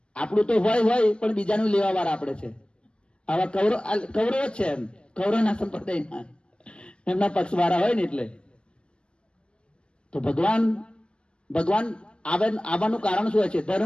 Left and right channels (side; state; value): right; late; 0.057 ms